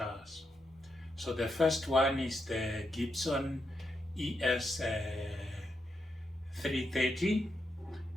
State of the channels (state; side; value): normal; both; correlation 0.83